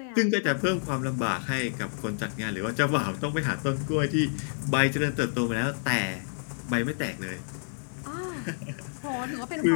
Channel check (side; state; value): right; silent; 59 dB below the other